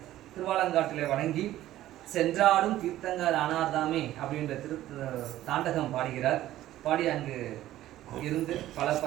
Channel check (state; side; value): quieter; left; 14.1 dB